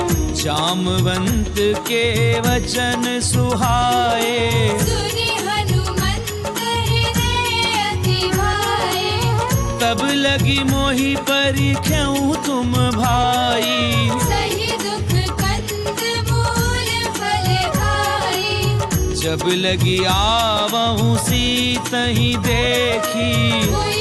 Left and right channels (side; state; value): both; identical; correlation 1.00